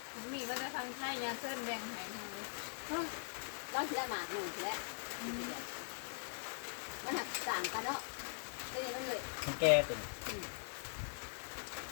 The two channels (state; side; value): silent; right; digital silence